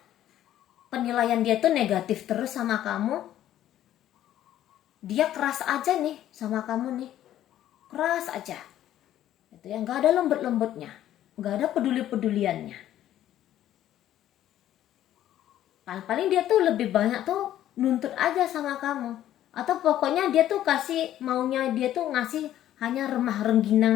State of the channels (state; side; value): quieter; right; 12.3 dB